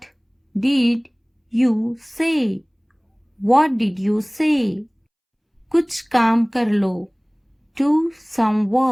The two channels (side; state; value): both; identical; correlation 1.00